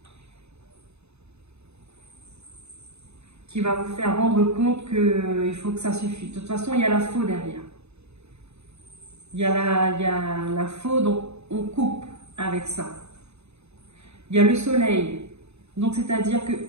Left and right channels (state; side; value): late; left; 0.80 ms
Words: qui va vous faire rendre compte qu'il faut que ça suffise. De toute façon, il y a la faux derrière. Il y a la faux, donc on coupe avec ça. Il y a le soleil. Donc, c'est-à-dire